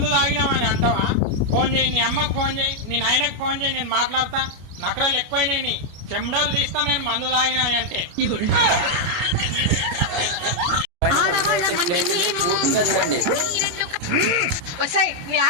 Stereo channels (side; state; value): left; late; 28 ms